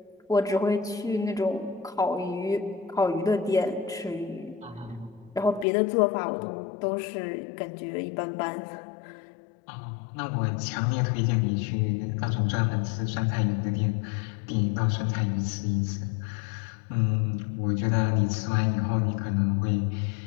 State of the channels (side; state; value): right; drops out; at 5.7 s